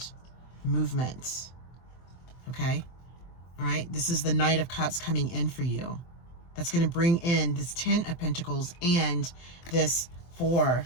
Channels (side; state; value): right; late; 23 ms